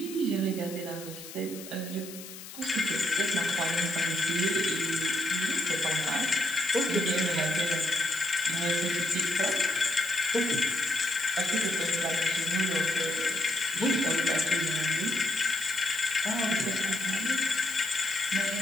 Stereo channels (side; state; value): left; noise; hiss, 14 dB below the sound